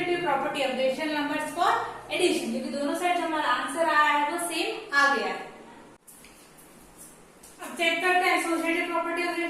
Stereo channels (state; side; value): identical; both; correlation 1.00